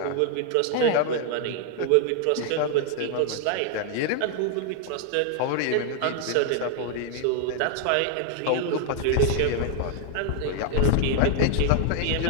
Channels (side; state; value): both; different; correlation 0.00